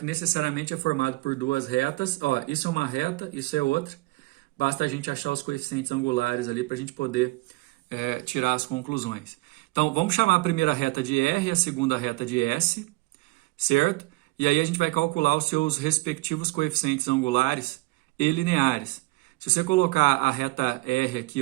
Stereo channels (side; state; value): left; quieter; 22.6 dB